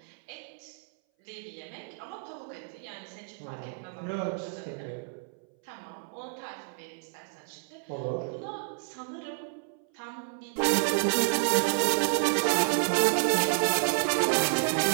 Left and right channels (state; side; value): silent; left; 58 dB below the other